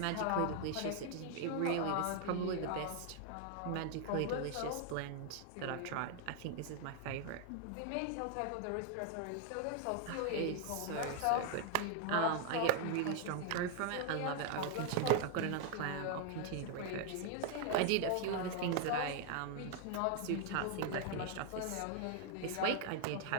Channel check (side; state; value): both; different; correlation 0.00